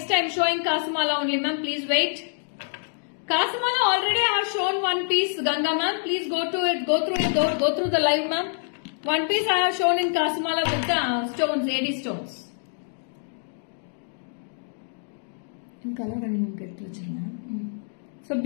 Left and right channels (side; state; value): right; silent; digital silence